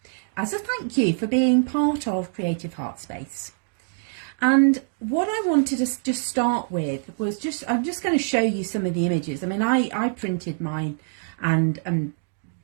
as a thank you for being part of Creative Heart Space. And what I wanted to just start with was I'm just going to show you some of the images. I mean, I printed mine and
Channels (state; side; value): silent; left; digital silence